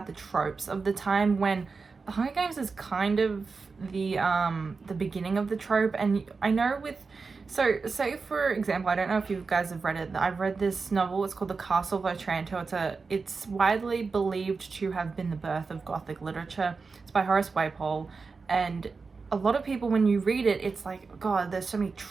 the tropes of the time when the Hunger Games is kind of the beginning of the trope. And I know with, so say for example, I don't know if you guys have read it, I've read this novel, it's called The Castle of Otranto. It's widely believed to have been the birth of Gothic literature. It's by Horace Walpole, and a lot of people, when you read it, it's like, God, there's so many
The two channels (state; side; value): quieter; left; 4.5 dB